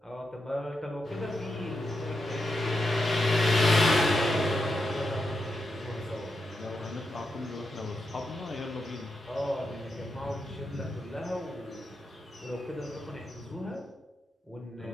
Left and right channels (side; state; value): both; normal; correlation 0.86